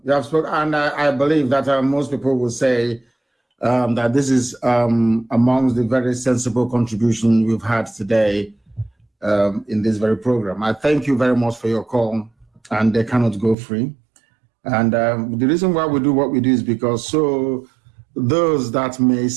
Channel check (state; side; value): drops out; left; at 13.6 s